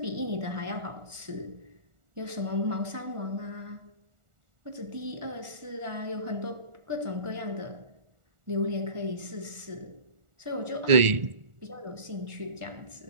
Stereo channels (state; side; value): late; left; 1.4 ms